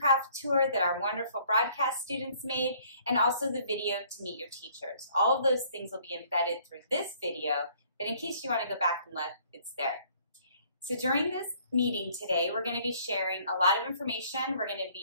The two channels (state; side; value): inverted; both; correlation -0.59